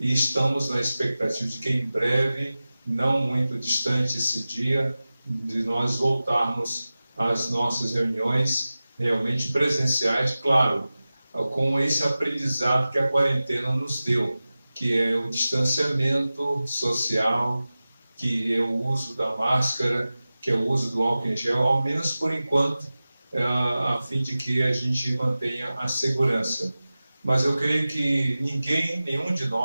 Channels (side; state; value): both; inverted; correlation -0.96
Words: estamos na expectativa de que em breve, não muito distante esse dia, de nós voltarmos às nossas reuniões realmente presenciais, claro, com esse aprendizado que a quarentena nos deu, que é o distanciamento social, que é o uso da máscara, que é o uso do álcool em gel, ao menos por enquanto, a fim de que a gente mantenha a segurança. Mas eu creio que nenhum de